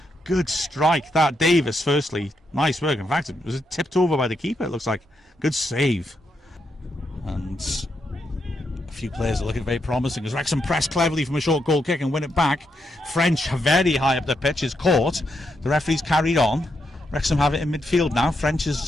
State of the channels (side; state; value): both; normal; correlation 0.81